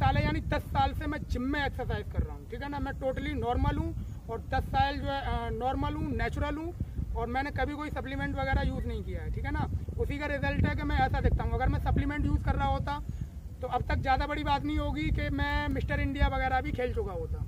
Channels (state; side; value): identical; both; correlation 1.00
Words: है, यानी 10 साल से मैं जिम में एक्सरसाइज कर रहा हूँ। ठीक है ना, मैं टोटली नॉर्मल हूँ और 10 साल जो है नॉर्मल हूँ, नेचुरल हूँ, और मैंने कभी कोई सप्लीमेंट वगैरह यूज़ नहीं किया है। ठीक है ना, उसी का रिजल्ट है कि मैं ऐसा दिखता हूँ। अगर मैं सप्लीमेंट यूज़ कर रहा होता तो अब तक ज़्यादा बड़ी बात नहीं होगी कि मैं मिस्टर इंडिया वगैरह भी खेल चुका होता।